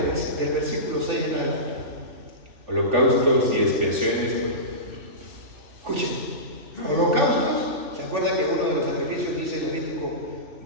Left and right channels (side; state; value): left; late; 3.4 ms